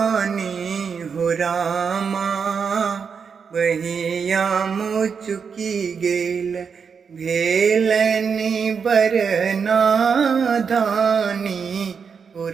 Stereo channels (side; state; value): left; quieter; 6.2 dB